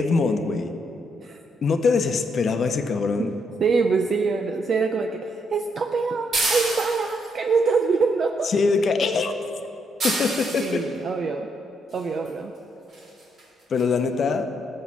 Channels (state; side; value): normal; both; correlation 0.76